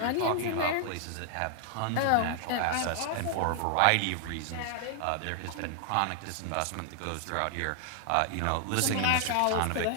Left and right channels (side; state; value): both; different; correlation 0.00